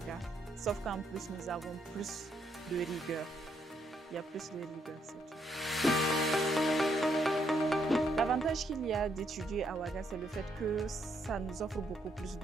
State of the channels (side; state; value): both; normal; correlation 0.74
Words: Sauf qu'en plus, nous avons plus de rigueur. Il y a plus de rigueur, c'est tout. L'avantage qu'il y a d'étudier à Ouaga, c'est le fait que ça nous offre beaucoup plus